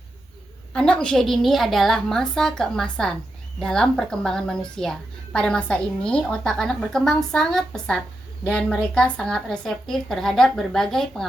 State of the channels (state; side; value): normal; both; correlation 0.87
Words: Anak usia dini adalah masa keemasan dalam perkembangan manusia. Pada masa ini, otak anak berkembang sangat pesat dan mereka sangat reseptif terhadap berbagai